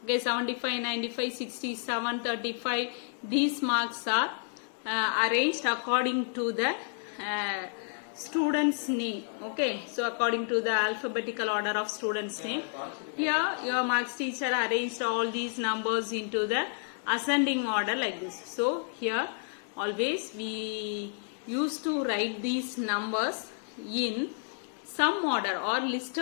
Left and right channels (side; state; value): right; silent; 58 dB below the other